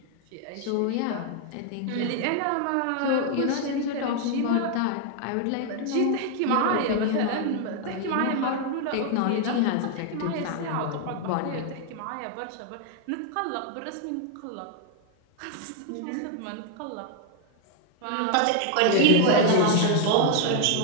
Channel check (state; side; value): different; both; correlation 0.00